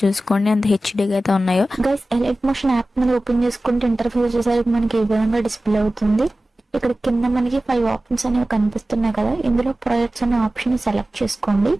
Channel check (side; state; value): both; normal; correlation 0.96